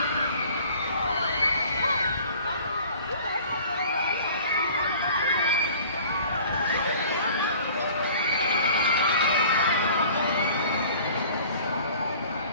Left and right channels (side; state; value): both; inverted; correlation -0.48